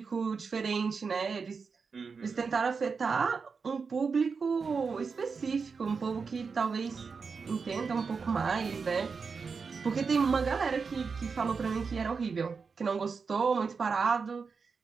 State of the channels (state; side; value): quieter; left; 5.2 dB